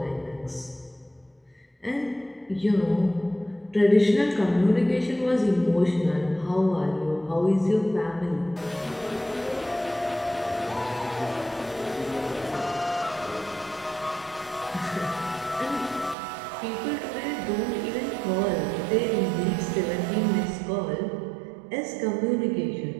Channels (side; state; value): left; drops out; at 16.2 s